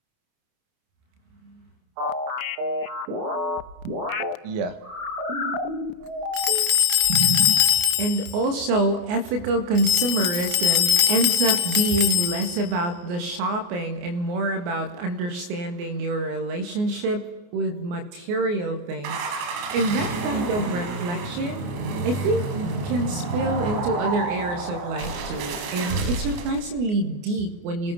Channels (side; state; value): left; late; 28 ms